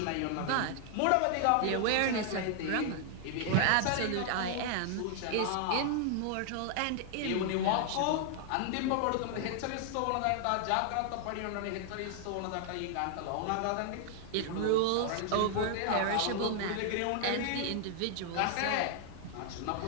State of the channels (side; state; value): both; different; correlation 0.00